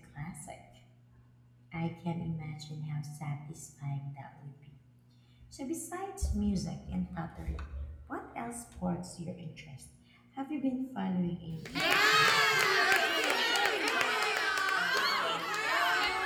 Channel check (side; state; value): both; identical; correlation 1.00